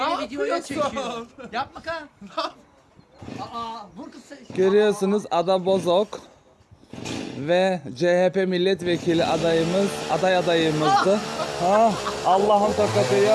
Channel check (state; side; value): identical; both; correlation 1.00